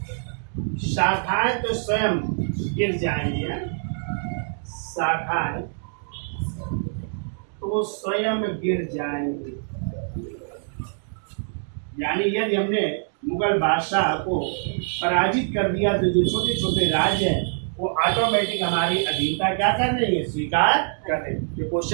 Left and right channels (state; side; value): silent; left; digital silence